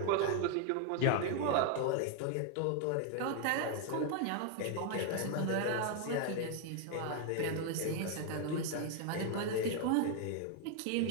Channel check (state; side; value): different; both; correlation 0.00